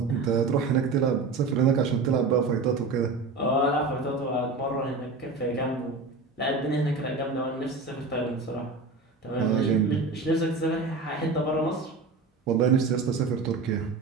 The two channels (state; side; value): quieter; left; 3.9 dB